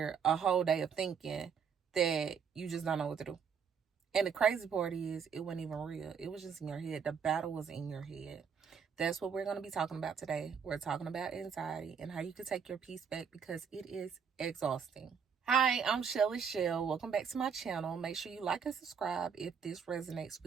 a whole day of thinking that you just don't know what to do? And the crazy part is, it wasn't even real. It was just in your head. The battle was in your head. That's what we're going to be talking about today. We're talking about anxiety and how you can take your peace back because it is exhausting. Hi, I'm Shelly Shell. Welcome back to my channel. Make sure you like and subscribe if this resonates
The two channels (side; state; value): left; quieter; 6.7 dB